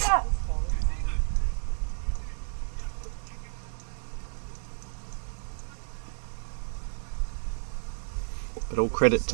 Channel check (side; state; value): left; silent; digital silence